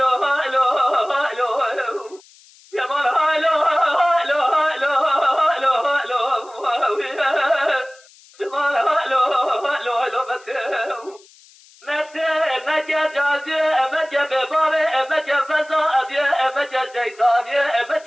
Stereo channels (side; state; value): left; noise; hiss, 26 dB below the sound